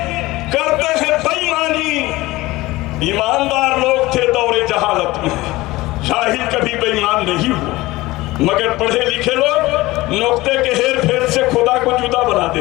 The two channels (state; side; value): quieter; right; 19.4 dB